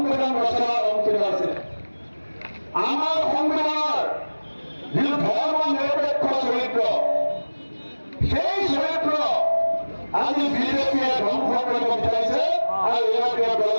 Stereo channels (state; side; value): inverted; both; correlation -1.00